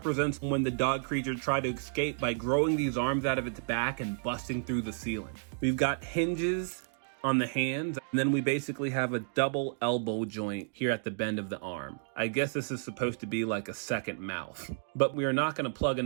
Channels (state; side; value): silent; left; digital silence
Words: when the dog creature tried to escape by growing these arms out of its back and busting through the ceiling. We've got hinges on the hands, and then we basically have a double elbow joint here at the bend of the arm. I guess this is supposed to be like a second mouth, but we are not gonna plug